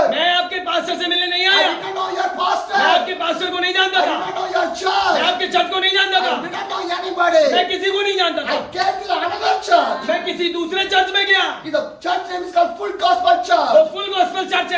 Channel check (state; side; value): identical; both; correlation 1.00